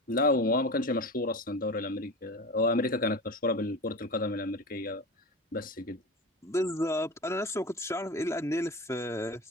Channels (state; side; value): normal; both; correlation 0.28